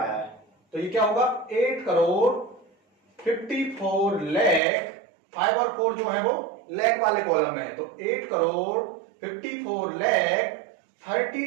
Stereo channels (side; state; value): left; drops out; at 4.6 s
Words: है। तो ये क्या होगा? 8 करोड़ 54 लाख। 5 और 4 जो है वो लाख वाले कॉलम में है। तो 8 करोड़ 54 लाख